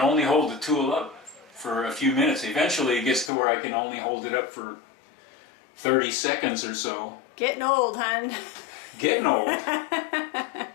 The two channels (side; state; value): right; drops out; at 3.3 s